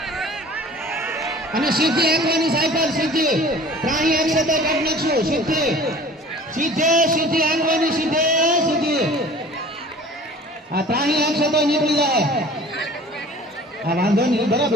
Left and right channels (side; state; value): both; normal; correlation 0.46